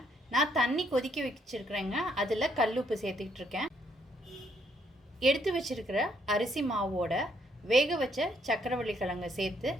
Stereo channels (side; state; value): both; normal; correlation 0.71